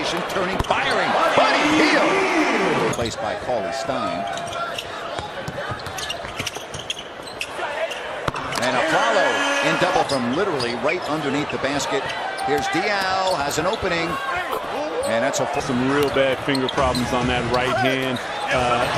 turning, firing. Buddy Hield, replaced by Cauley-Stein. And Aflalo in double from literally right underneath the basket. Here's Dial, has an opening. And that's some real bad finger problems on that right hand.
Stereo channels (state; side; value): identical; both; correlation 1.00